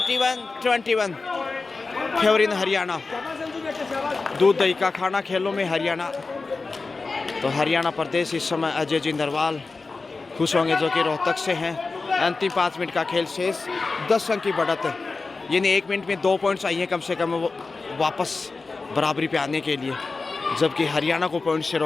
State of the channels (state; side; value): quieter; right; 3.9 dB